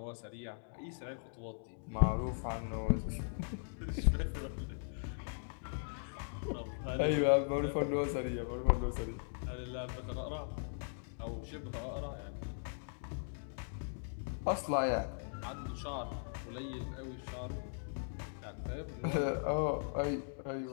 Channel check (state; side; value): silent; right; digital silence